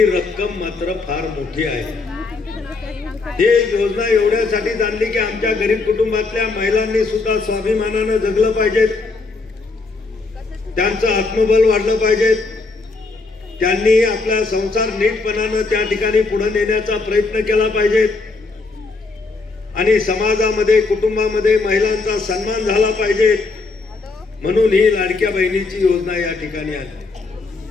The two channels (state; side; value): quieter; right; 3.8 dB